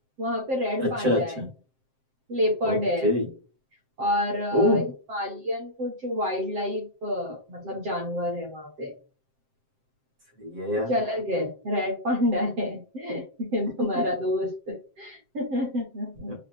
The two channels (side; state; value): left; late; 7.6 ms